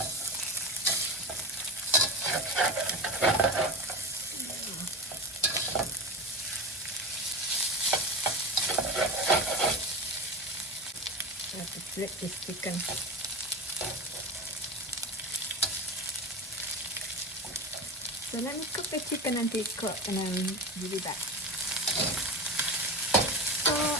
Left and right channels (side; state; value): both; normal; correlation 0.24